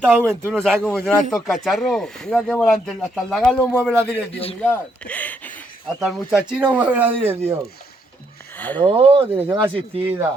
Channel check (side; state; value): both; normal; correlation 0.74